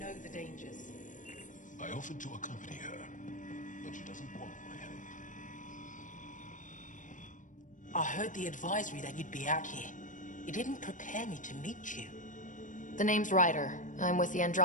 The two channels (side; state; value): right; late; 0.37 ms